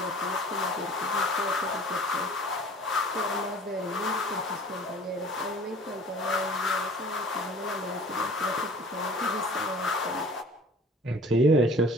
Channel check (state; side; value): normal; both; correlation 0.47